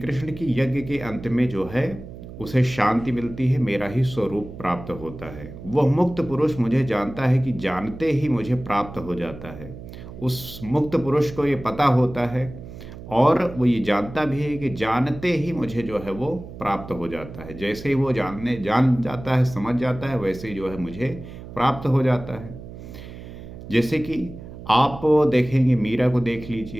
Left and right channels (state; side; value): noise; right; hum, 14 dB below the sound